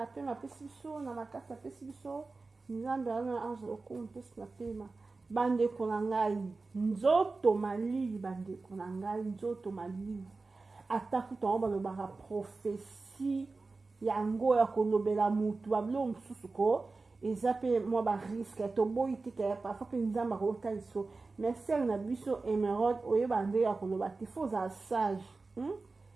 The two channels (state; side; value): quieter; left; 3.8 dB